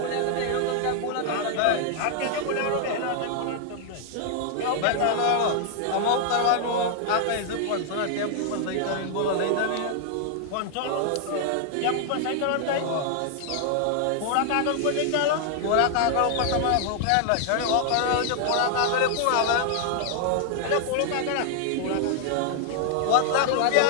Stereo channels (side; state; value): both; different; correlation 0.00